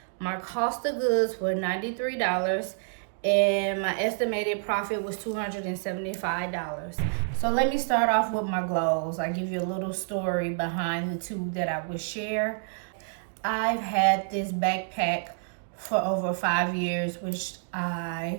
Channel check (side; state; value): left; silent; digital silence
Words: My cost of goods were $93. And my estimated profit was $275. So let me start off with my glows. I give you a little story behind the two that I would share. I've had this backpack for over 5 years, which